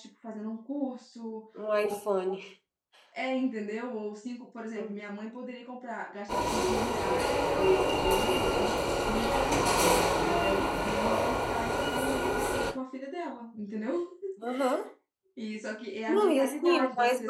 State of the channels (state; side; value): identical; both; correlation 1.00